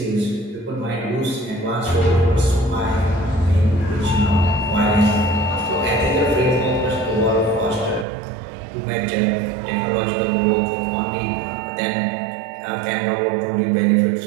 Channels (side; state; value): left; drops out; at 8.1 s